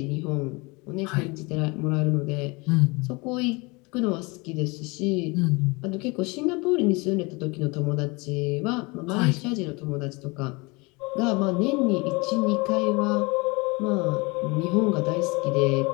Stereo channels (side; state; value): right; quieter; 26.7 dB